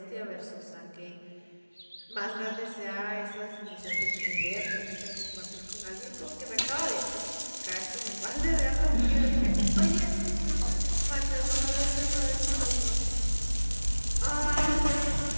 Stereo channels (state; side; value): inverted; both; correlation -1.00